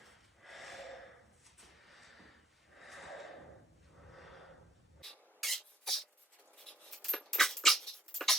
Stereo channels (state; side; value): normal; both; correlation 0.68